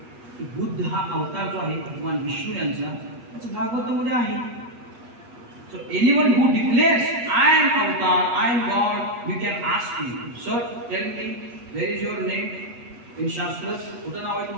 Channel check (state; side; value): late; left; 8.3 ms